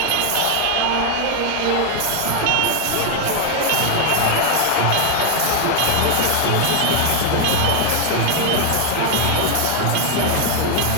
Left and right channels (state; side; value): different; both; correlation 0.00